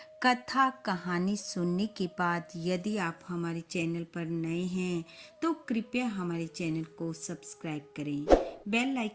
कथा कहानी सुनने के बाद यदि आप हमारे चैनल पर नए हैं तो कृपया हमारे चैनल को सब्सक्राइब करें, बेल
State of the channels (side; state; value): both; identical; correlation 1.00